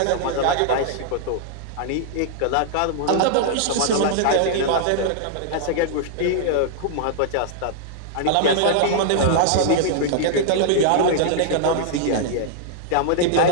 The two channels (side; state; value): both; different; correlation -0.01